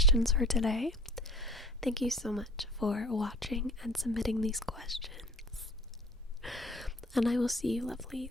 for today. Thank you so much for watching and submitting these questions. And I will see you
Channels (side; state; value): both; normal; correlation 0.49